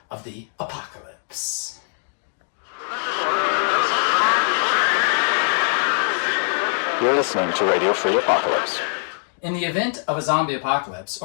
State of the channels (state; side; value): silent; right; digital silence